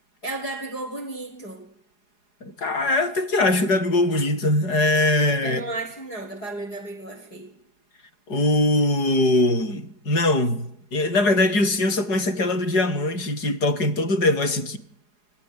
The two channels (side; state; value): right; late; 4.8 ms